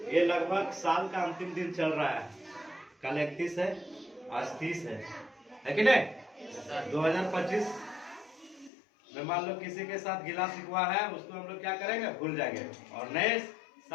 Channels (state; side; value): drops out; right; at 8.7 s